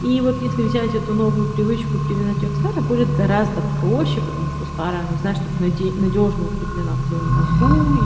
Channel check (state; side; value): identical; both; correlation 1.00